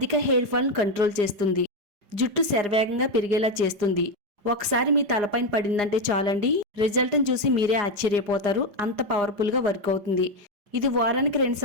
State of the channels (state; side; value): late; left; 4.9 ms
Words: హెయిర్ ఫాల్ కంట్రోల్ చేస్తుంది. జుట్టు శరవేగంగా పెరిగేలా చేస్తుంది. ఒకసారి మీ తలపైన పడిందంటే చాలండి, రిజల్ట్ని చూసి మీరే ఆశ్చర్యపోతారు. అంత పవర్ఫుల్ గా వర్క్ అవుతుంది. ఇది వారానికి 2